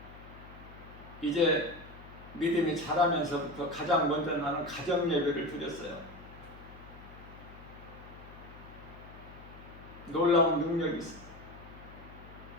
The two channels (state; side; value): noise; left; hum, 18 dB below the sound